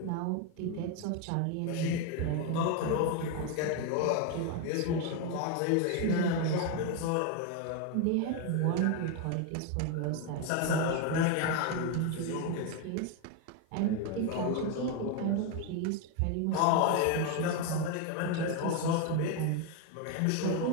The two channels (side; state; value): both; different; correlation 0.02